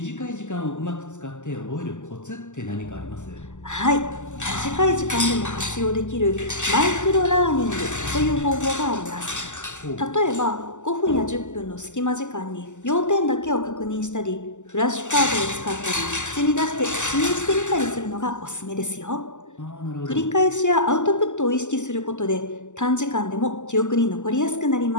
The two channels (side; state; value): right; late; 0.84 ms